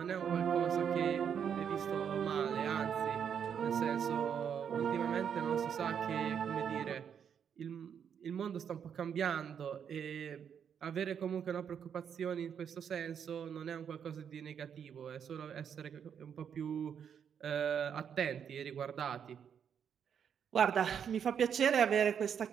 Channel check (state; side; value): quieter; left; 7.9 dB